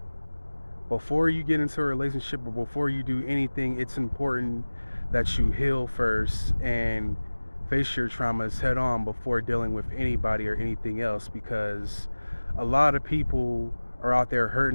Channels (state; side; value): inverted; both; correlation -1.00